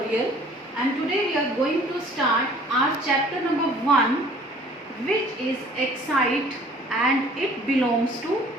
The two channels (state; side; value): normal; both; correlation 0.53